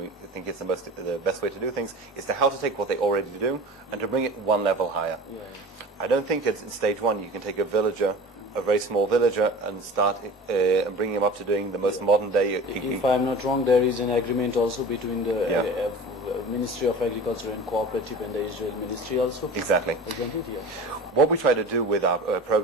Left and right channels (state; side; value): normal; both; correlation 0.37